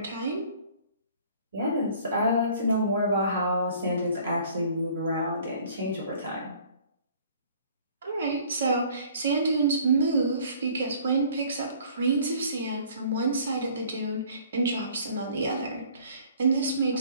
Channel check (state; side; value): inverted; both; correlation -0.54